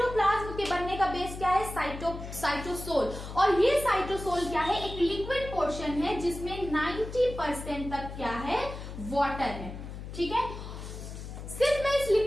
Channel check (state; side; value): noise; left; hum, 10 dB below the sound